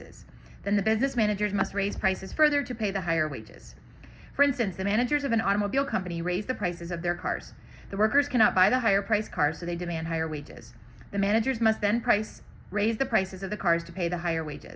Then the business managers must raise prices further to pay the higher wages. For instance, the managers of an automobile company raise the prices of their cars. The workers cannot buy the higher priced cars, so they demand higher wages. The managers must then raise the prices of the cars to pay the higher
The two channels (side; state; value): both; identical; correlation 1.00